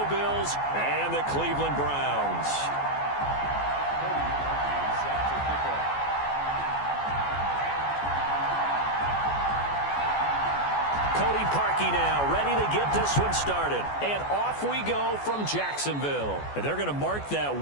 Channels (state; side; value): late; right; 14 ms